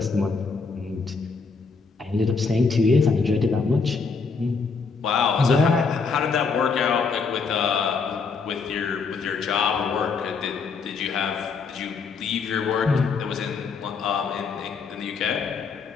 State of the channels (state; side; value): quieter; right; 4.9 dB